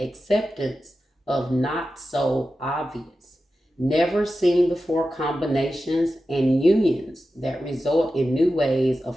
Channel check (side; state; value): both; normal; correlation 0.92